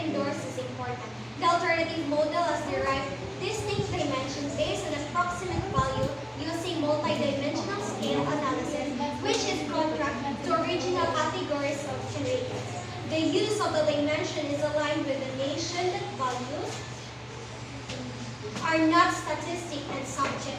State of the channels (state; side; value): identical; both; correlation 1.00